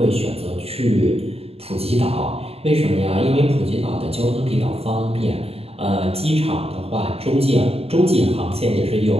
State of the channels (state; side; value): late; left; 0.29 ms